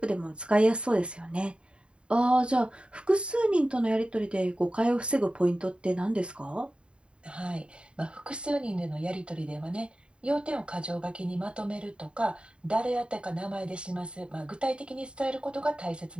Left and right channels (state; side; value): late; left; 0.054 ms